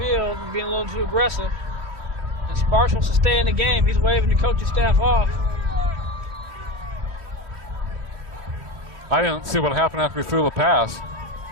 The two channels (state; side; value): late; left; 3.1 ms